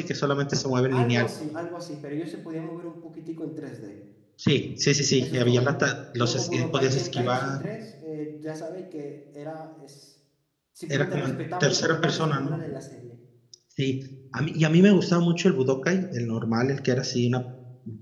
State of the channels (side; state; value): both; identical; correlation 1.00